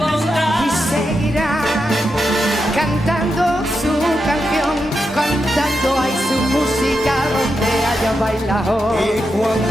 Y seguirá cantando su canción, cantando ahí su música donde haya bailado. Y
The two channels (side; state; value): both; normal; correlation 0.86